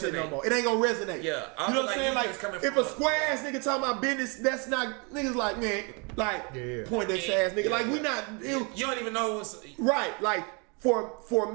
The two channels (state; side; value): quieter; left; 32.7 dB